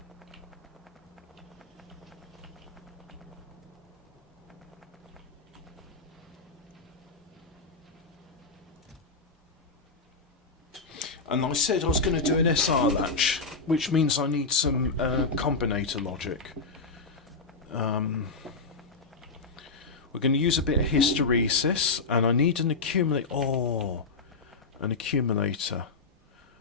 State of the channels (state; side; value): quieter; right; 4.1 dB